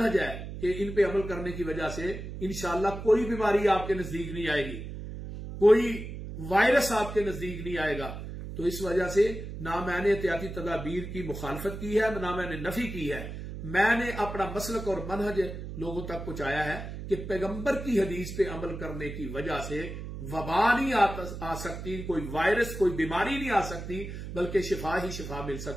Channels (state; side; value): noise; right; hum, 8 dB below the sound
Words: ہے کہ ان پہ عمل کرنے کی وجہ سے انشاءاللہ کوئی بیماری آپ کے نزدیک نہیں آئے گی، کوئی وائرس آپ کے نزدیک نہیں آئے گا۔ تو اس وجہ سے نہ میں نے احتیاطی تدابیر کی مخالفت کی ہے، نہ میں نے نفی کی ہے، میں نے اپنا مسلک اور منہج لوگوں تک پہنچایا ہے کہ پیغمبر کی حدیث پہ عمل کرنے کی وجہ سے وبا نہیں آ سکتی، کوئی وائرس، کوئی بیماری نہیں آ سکتی، بلکہ شفا ہی شفا مل